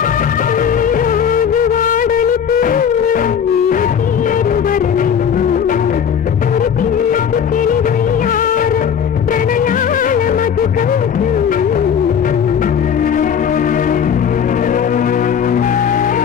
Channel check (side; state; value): right; quieter; 7.8 dB